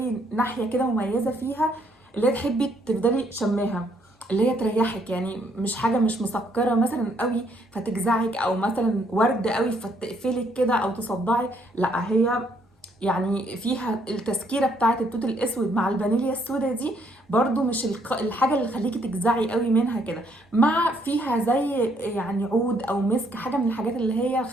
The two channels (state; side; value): normal; both; correlation 0.69